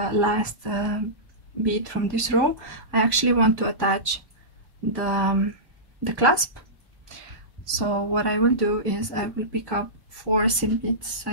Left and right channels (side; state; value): left; late; 1.1 ms